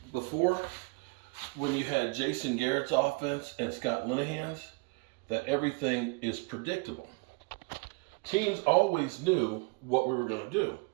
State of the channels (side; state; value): left; quieter; 29.4 dB